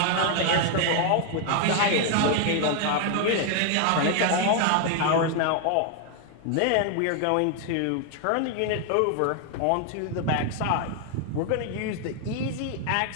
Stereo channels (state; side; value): different; both; correlation 0.00